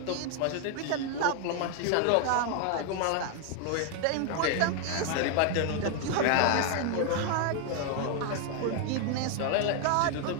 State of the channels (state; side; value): different; both; correlation 0.00